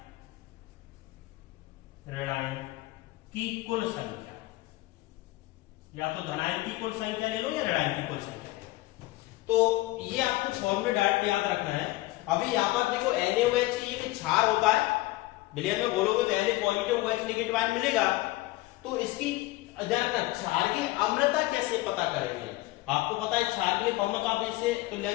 की कुल संख्या, या तो धनायन की कुल संख्या ले लो या ऋणायन की कुल संख्या ले लो। तो ये आपको फॉर्मूला डायरेक्ट याद रखना है। अभी यहां पर देखो NaOH एक क्षार होता है, विलयन में बोलोगे तो Na positive OH negative ion मिलेगा। तो इसकी क्षार की अम्लता कैसे पता करेंगे, आपको पता है क्षार के लिए फॉर्मूला आप इससे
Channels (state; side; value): quieter; right; 19.1 dB